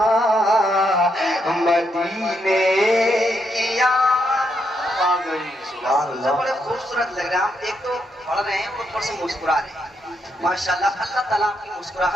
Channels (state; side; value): normal; both; correlation 0.79